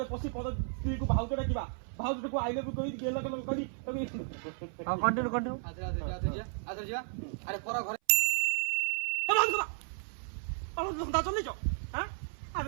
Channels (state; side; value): silent; left; 55 dB below the other